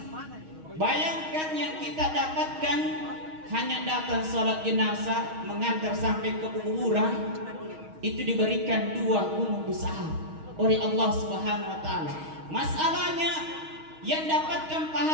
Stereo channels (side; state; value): left; late; 6.4 ms